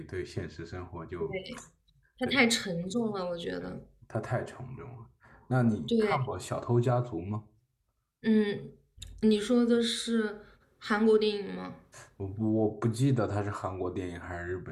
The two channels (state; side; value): identical; both; correlation 1.00